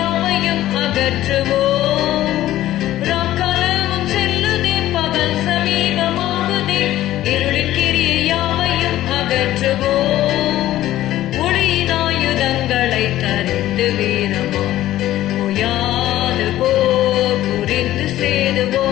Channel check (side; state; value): right; quieter; 14.1 dB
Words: அகற்றுவோம். ஒளியினாயுதங்களை தரித்து வீரமாம் ஓயாது போர் புரிந்து